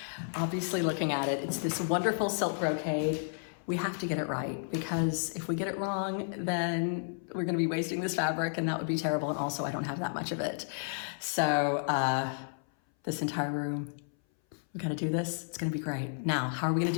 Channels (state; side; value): silent; right; 56 dB below the other